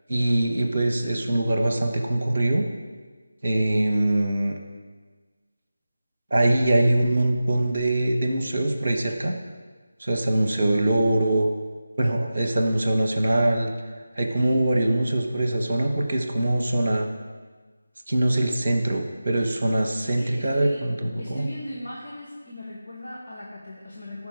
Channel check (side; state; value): both; inverted; correlation -0.94